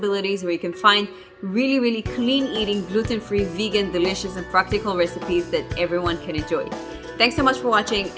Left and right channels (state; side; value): identical; both; correlation 1.00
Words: where you can find really clean eating, gluten-free, vegan, delicious, and practical recipes that everyone can enjoy. Thanks so much for watching,